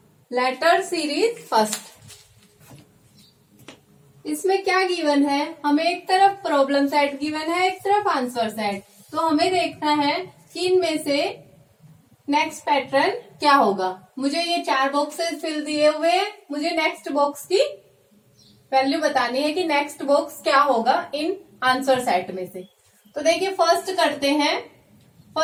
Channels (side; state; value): both; identical; correlation 1.00